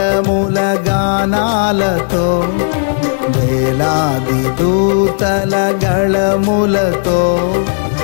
గానాలతో వేలాది దూతల గళములతో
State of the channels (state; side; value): silent; right; digital silence